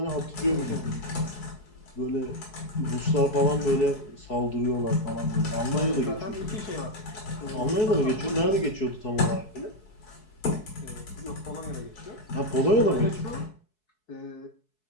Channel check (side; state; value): right; late; 4.7 ms